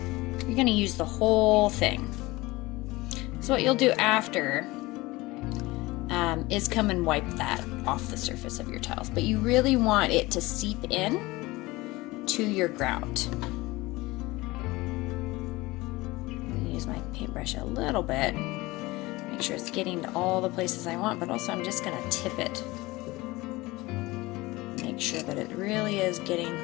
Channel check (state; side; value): quieter; right; 20.9 dB